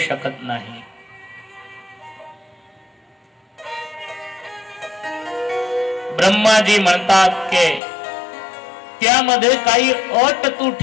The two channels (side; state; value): right; drops out; at 7.8 s